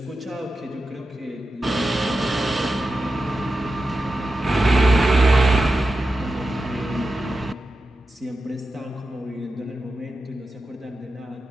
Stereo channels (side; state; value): both; normal; correlation 0.91